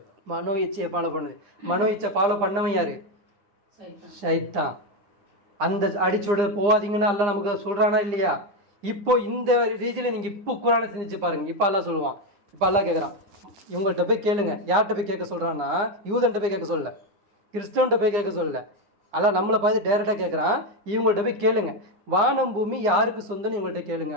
மனோ இச்சையை ஃபாலோ பண்ணுது. மனோ இச்சை ஃபாலோ பண்ணவன் யாரு? ஷைத்தான். அந்த அடிச்சுட போகாதீங்கன்னா அல்லாஹ் நமக்கு சொல்றானா இல்லையா? இப்போ இந்த ரீதியில் நீங்கள் இப்போ குரானை சிந்திச்சு பாருங்க. இப்போ அல்லாஹ் சொல்லுவான். இப்போ அல்லாஹ் கேட்குறான், இவங்கள்ட்ட போய் கேளுங்க. யார்கிட்ட போய் கேட்க சொல்கிறான்னா, யூதன்ட்ட போய் கேட்க சொல்லல, கிறிஸ்தவன்ட்ட போய் கேட்க சொல்லல. அல்லாஹ் நம்மளை பார்த்து டேரெக்டாக கேட்குறான், இவங்கள்ட்ட போய் கேளுங்க, வானம் பூமி யாருக்கு சொந்தம்னு இவங்கள்ட்ட கேளுங்க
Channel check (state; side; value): late; left; 9.8 ms